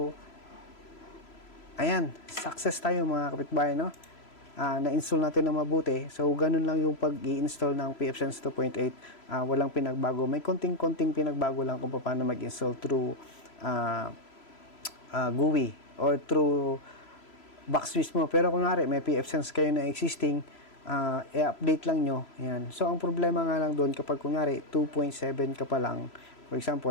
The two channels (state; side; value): late; right; 3.0 ms